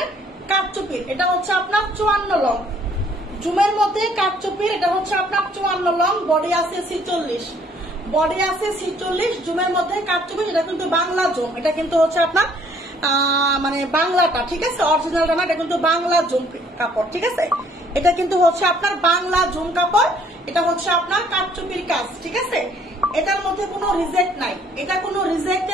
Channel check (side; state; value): both; normal; correlation 0.62